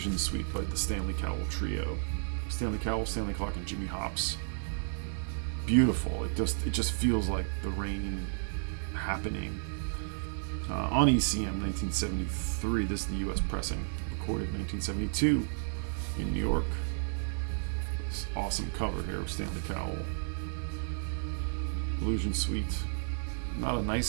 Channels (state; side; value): silent; left; digital silence